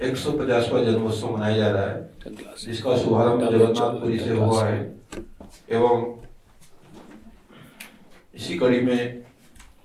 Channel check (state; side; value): identical; both; correlation 1.00